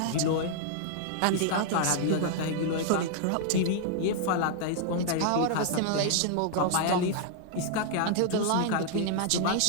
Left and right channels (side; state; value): both; different; correlation -0.01